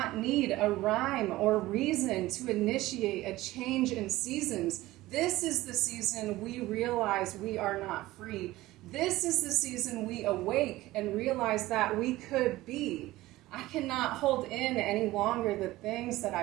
need a rhyme or reason to initiate a change in seasons. This is the season we realize we are not free. This is the season we awake and realize that we could be. I cannot hold in any longer the things that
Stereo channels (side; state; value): left; quieter; 17.5 dB